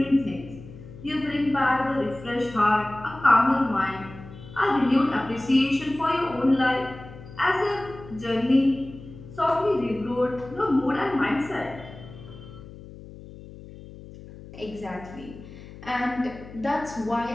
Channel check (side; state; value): left; noise; hum, 16 dB below the sound